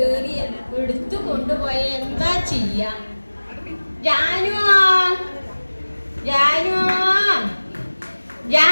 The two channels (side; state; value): both; inverted; correlation -1.00